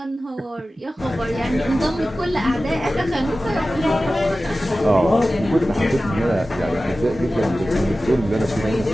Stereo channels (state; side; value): normal; both; correlation 0.95